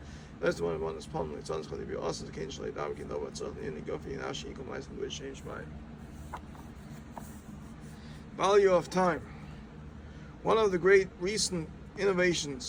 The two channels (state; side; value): identical; both; correlation 1.00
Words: That's the one that's palm like Tzon Chali Bi Osas the Kein Shalai Dav Kin Dov Tzon Yini Gofi Nashi Yikom Leisen Duri Shem Shmai. Value of time. One of the great recent